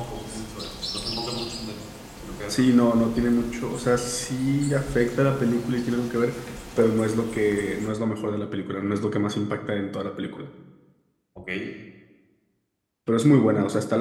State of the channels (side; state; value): both; identical; correlation 1.00